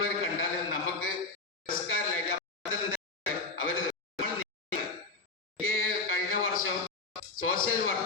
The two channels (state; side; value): quieter; right; 3.6 dB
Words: കണ്ടാൽ നമുക്ക് പുരസ്കാരമില്ല. അവര് കഴിഞ്ഞ വർഷം സോഷ്യൽ